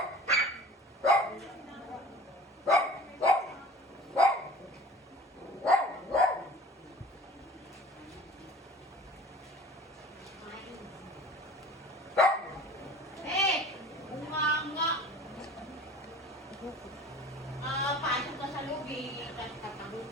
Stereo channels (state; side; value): normal; both; correlation 0.44